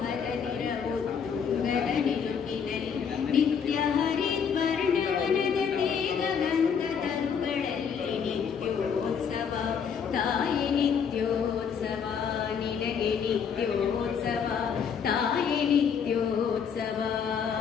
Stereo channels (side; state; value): right; quieter; 6.9 dB